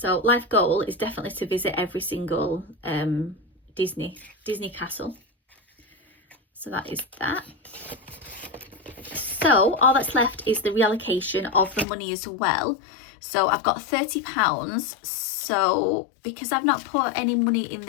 life goal is definitely to visit every single Disney castle. So that is that. So all that's left is the reallocation of the money as well. So I've got £30. So because I've not put any money in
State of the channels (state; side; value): drops out; right; at 11.9 s